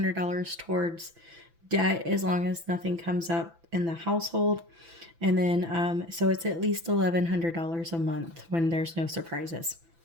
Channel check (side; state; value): left; late; 6.0 ms